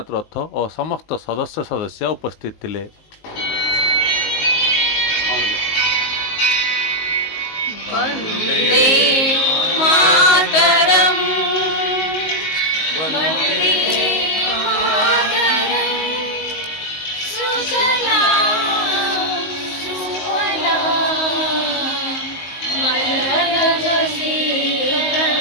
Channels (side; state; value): right; late; 19 ms